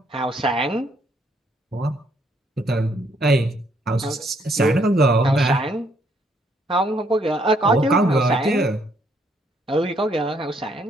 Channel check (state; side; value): normal; both; correlation 0.69